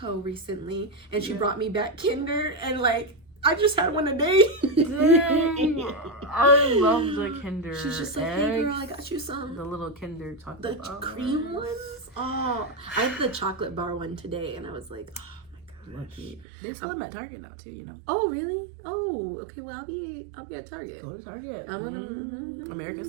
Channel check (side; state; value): left; drops out; at 16.4 s